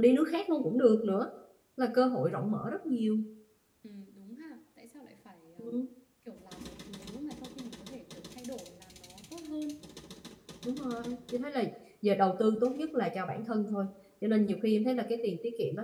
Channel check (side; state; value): both; identical; correlation 1.00